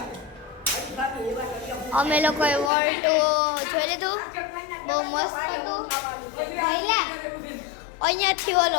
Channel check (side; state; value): right; drops out; at 2.7 s